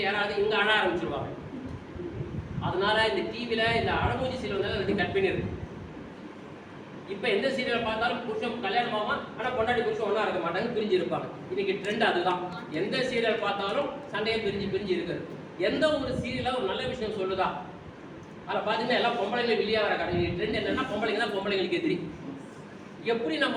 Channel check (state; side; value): identical; both; correlation 1.00